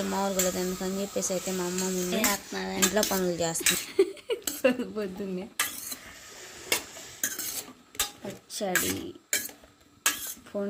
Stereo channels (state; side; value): identical; both; correlation 1.00